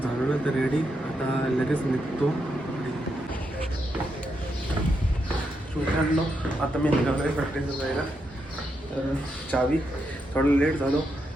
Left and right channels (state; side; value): normal; both; correlation 0.82